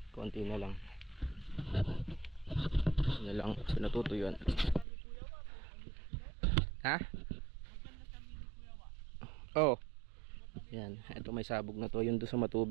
Konti na lang. Ano lang, sinatutuyuan. Ha? Oh. Yan, ito may sabog na to. Yung doon sa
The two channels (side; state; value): left; drops out; at 4.9 s